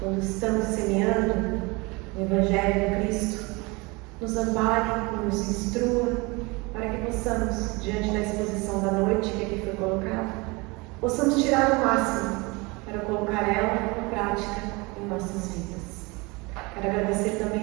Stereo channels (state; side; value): quieter; left; 26.0 dB